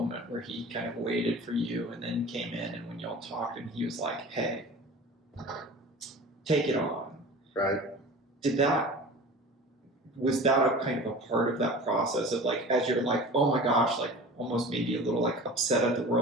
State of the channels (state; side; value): normal; both; correlation 0.38